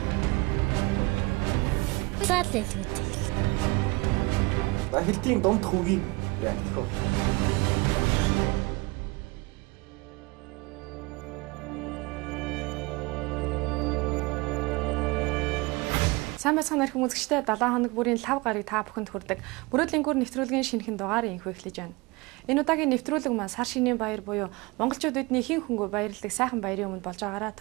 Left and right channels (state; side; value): quieter; left; 24.3 dB